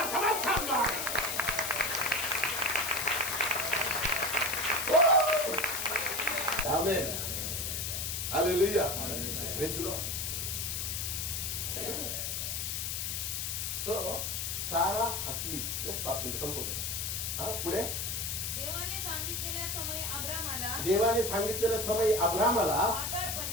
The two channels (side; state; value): left; noise; hiss, 2 dB below the sound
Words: come on somebody. Amen. Hallelujah. Praise the Lord. So, सारा हसली. Just 5 minutes संपवतो. हा, पुढे. देवाने सांगितलेल्या समयी अब्रामाला, देवाने सांगितलेल्या समयी अब्रामाला